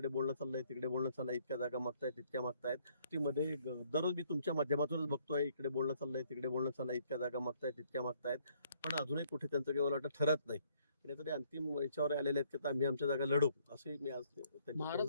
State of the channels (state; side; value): inverted; both; correlation -0.66